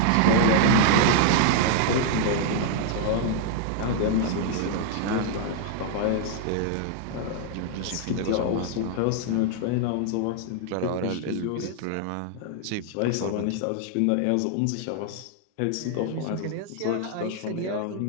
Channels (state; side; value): different; both; correlation 0.00